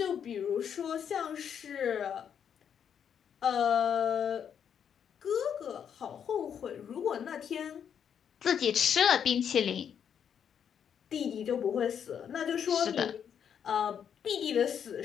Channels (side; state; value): right; quieter; 8.2 dB